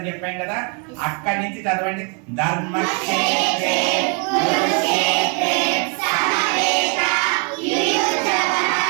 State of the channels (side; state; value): left; quieter; 35.6 dB